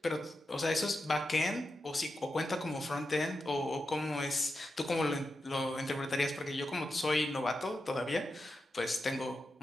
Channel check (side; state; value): both; normal; correlation 0.89